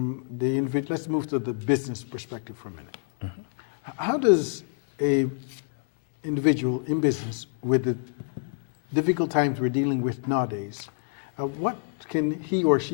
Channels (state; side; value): silent; right; digital silence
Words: the individual, let's move to the business perspective for a minute. How does a individual in business with the difficult times we're dealing with nowadays, what can he or